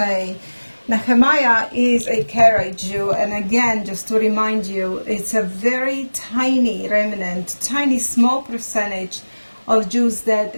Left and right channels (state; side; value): inverted; both; correlation -1.00